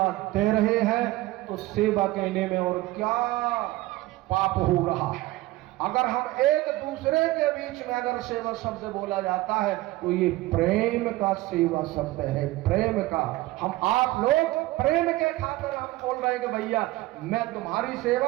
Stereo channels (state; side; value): quieter; left; 18.4 dB